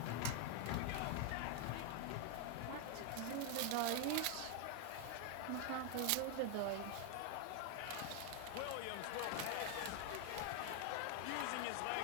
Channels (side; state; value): both; different; correlation 0.00